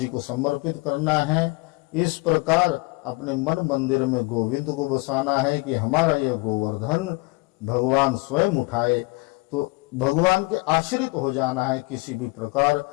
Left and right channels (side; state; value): right; quieter; 25.5 dB